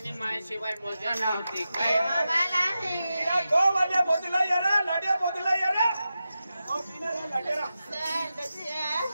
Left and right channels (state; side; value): inverted; both; correlation -0.91